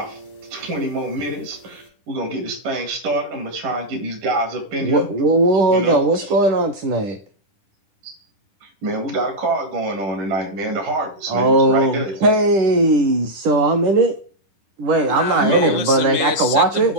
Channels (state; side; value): late; left; 10 ms